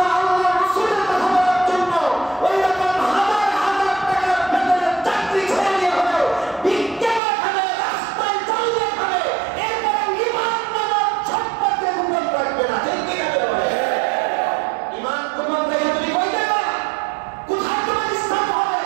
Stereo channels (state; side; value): drops out; left; at 7.2 s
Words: রাসূলের কথা বলার জন্য ওই রকম